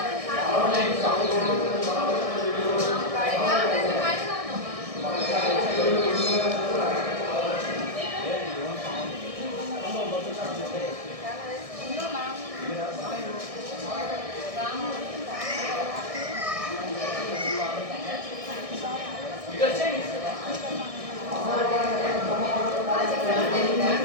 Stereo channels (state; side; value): late; left; 1.6 ms